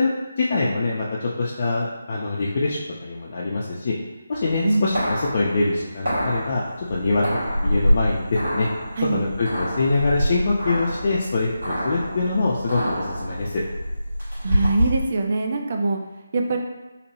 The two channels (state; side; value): inverted; both; correlation -0.88